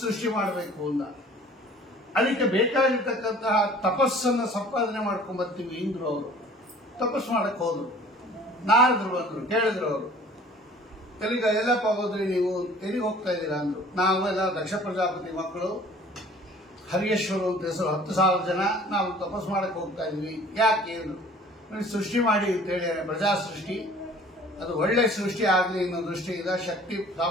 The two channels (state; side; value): normal; both; correlation 0.49